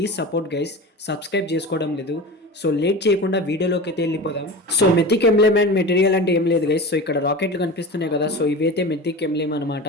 సపోర్ట్ గైస్, సబ్స్క్రైబ్ చేసుకోవడం లేదు. సో లేట్ చేయకుండా వీడియోలోకి అయితే వెళ్ళిపోదాం. సో మెథిక్ ఎంబ్లెమ్ అండ్ మెటీరియల్ అంటే ఏం లేదు గైస్. సో ఇక్కడ రాకెట్లు కనిపిస్తున్నాయి కదా, సో ఇవైతే మెథిక్ ఎంబ్లెమ్ అనమాట.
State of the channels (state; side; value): normal; both; correlation 0.31